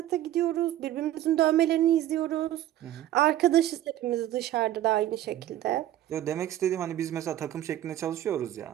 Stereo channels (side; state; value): left; quieter; 13.0 dB